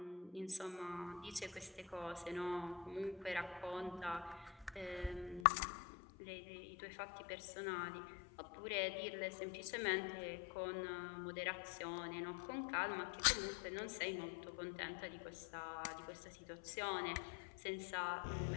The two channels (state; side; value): drops out; right; at 5.5 s